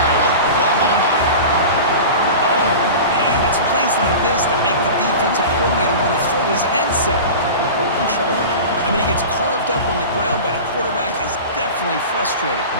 Oklahoma. Oh, man, it's plays like this that make the defensive coordinator want to throw his headset. Control. I mean, he gets carved up on the ground, but the quarterback is definitely frustrated.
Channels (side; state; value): both; inverted; correlation -0.33